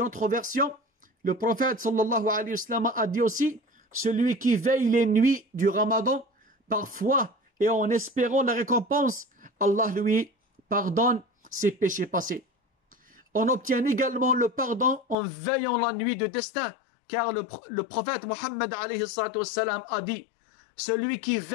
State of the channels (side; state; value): right; drops out; at 15.2 s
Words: autre version, le prophète sallallahu alayhi wa sallam a dit aussi: celui qui veille les nuits du Ramadan par foi et en espérant la récompense, Allah lui pardonne ses péchés passés. On obtient également le pardon en veillant la nuit de destin, car le prophète Mohammed alayhi salatu wassalam a dit: celui qui